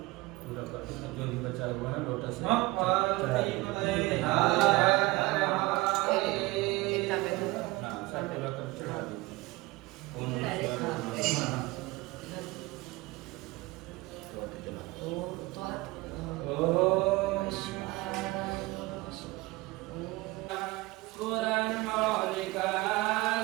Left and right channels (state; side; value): quieter; left; 21.1 dB